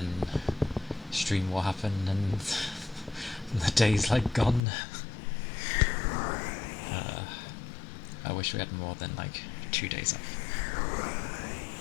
stream will happen, and the day's like gone. I wish we had more than like 2 days off.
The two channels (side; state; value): right; drops out; at 4.6 s